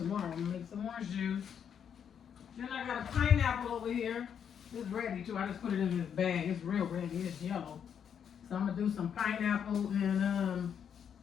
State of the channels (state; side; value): quieter; right; 8.0 dB